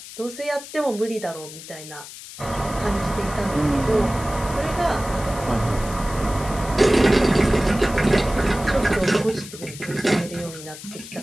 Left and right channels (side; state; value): left; noise; hiss, 14 dB below the sound